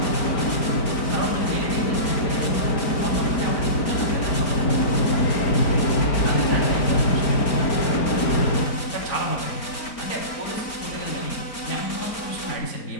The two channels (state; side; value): late; right; 4.4 ms